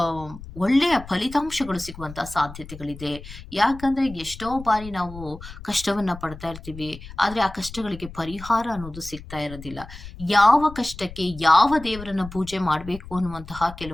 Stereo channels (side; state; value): left; noise; rumble, 14 dB below the sound